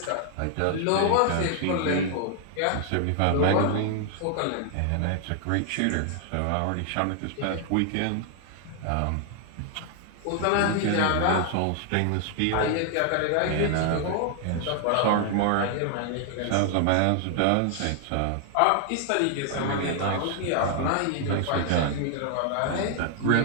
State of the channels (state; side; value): different; both; correlation 0.00